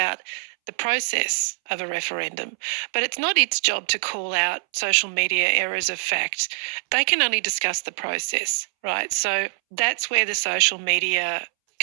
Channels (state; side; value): silent; left; 63 dB below the other